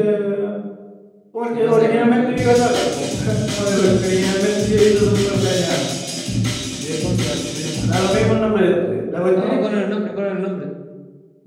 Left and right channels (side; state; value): both; identical; correlation 1.00